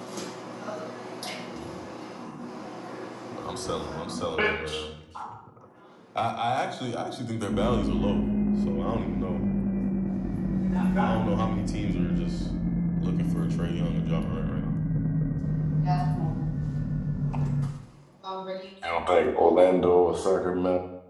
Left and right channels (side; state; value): both; identical; correlation 1.00